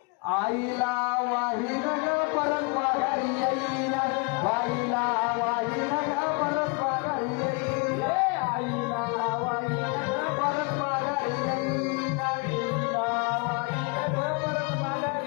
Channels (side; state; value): right; quieter; 31.4 dB